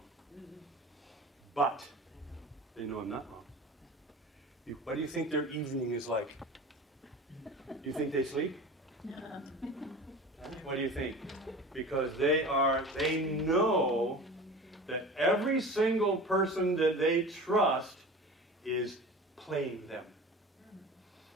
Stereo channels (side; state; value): both; normal; correlation 0.36